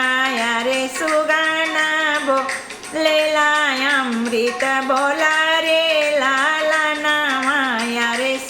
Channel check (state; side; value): identical; both; correlation 1.00